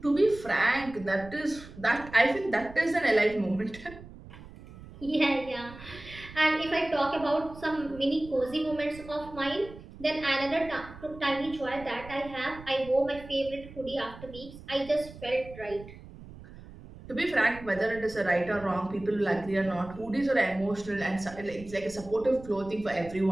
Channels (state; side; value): noise; right; rumble, 17 dB below the sound